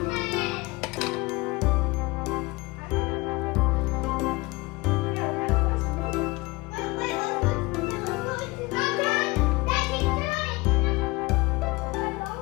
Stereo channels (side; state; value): right; quieter; 23.0 dB